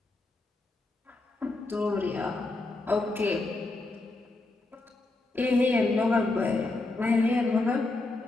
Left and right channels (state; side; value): quieter; right; 3.1 dB